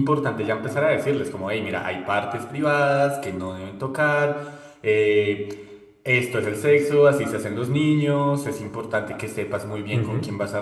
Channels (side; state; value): both; identical; correlation 1.00